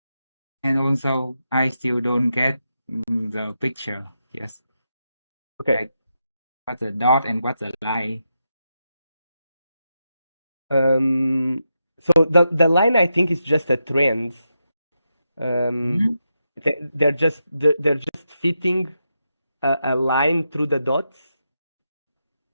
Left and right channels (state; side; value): inverted; both; correlation -0.86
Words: and also I still don't get the picture. Yes, Okay. like what's the dot and what's the line? So the line I think is just a trend. Mhm. They're just fitting a line through the dots,